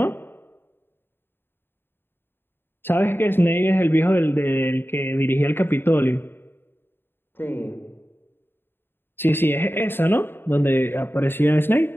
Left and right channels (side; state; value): right; late; 0.10 ms